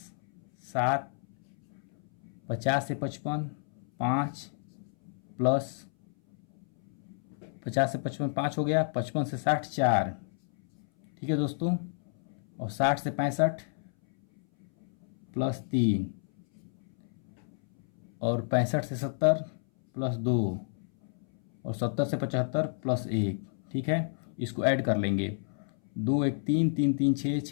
7, 50 से 55 5, प्लस 50 से 55 5 हो गया, 55 से 60 4। ठीक है दोस्तों, और 60 से 65 प्लस 3, और 65 से 70 प्लस 2, और 70 से 75 प्लस 1। ठीक है, इसको ऐड कर लेंगे। 2 1 3 3 3 6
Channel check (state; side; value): silent; right; 57 dB below the other